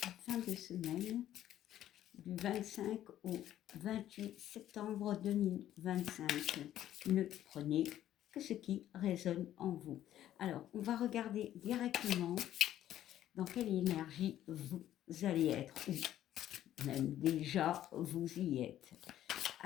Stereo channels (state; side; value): quieter; right; 12.2 dB